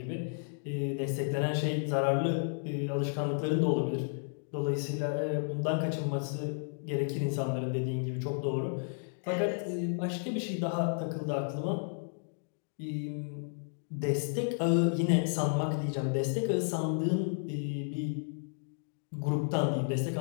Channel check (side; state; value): right; silent; digital silence